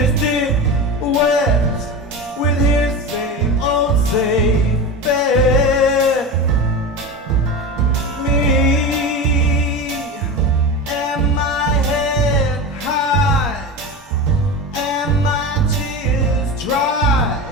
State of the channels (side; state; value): both; normal; correlation 0.25